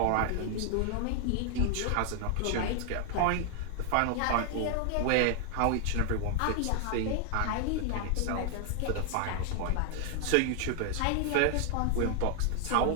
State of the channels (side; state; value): both; different; correlation 0.00